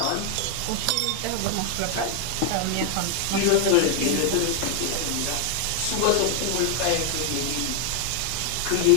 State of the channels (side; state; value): both; different; correlation 0.00